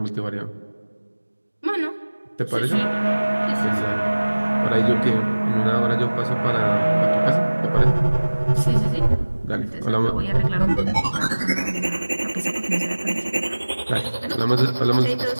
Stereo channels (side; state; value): both; inverted; correlation -1.00